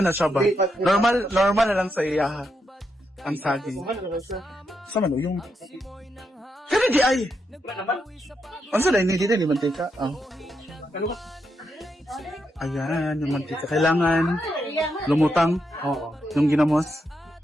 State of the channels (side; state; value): both; normal; correlation 0.82